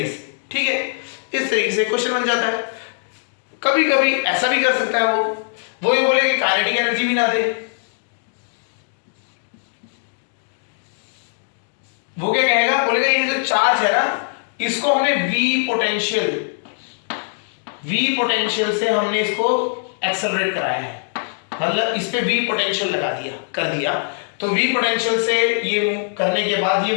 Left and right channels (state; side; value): silent; right; digital silence